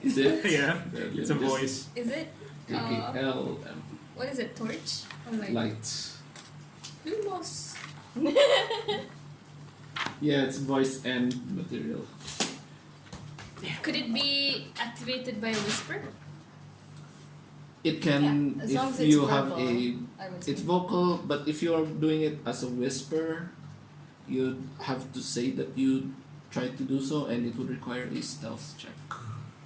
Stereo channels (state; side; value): identical; both; correlation 1.00